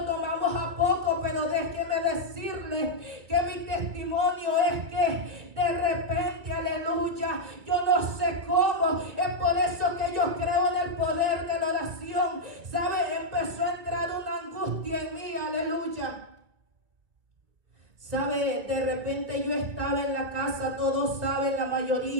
tomamos a poco, pero déjeme decirle que mi testimonio es que de repente, aleluya, yo no sé cómo, es por eso que yo creo en el poder de la oración. ¿Sabe? Empezó a entrar una angustia en mí, aleluya. ¿Sabe? De repente yo estaba en la casa, todos saben, la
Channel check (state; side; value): late; left; 2.4 ms